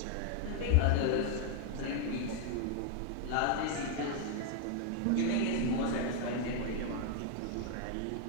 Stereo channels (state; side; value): different; both; correlation 0.01